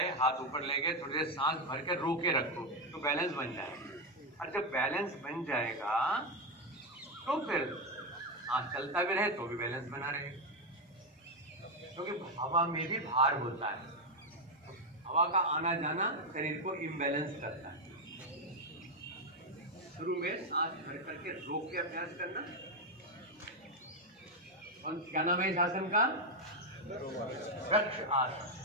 हाथ ऊपर ले गए, थोड़ी देर सांस भर के रोके रखो तो बैलेंस बन जाएगा। और जब बैलेंस बन जाएगा तो फिर सांस चलता भी रहे तो भी बैलेंस बना रहेगा, क्योंकि हवा में भी भार होता है। हवा का आना जाना शरीर को इम्बैलेंस करता है। शुरू में सांस भर करके रोक के अभ्यास करना। और क्या नाम है इस आसन का? वृक्ष आसन।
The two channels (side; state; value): both; normal; correlation 0.06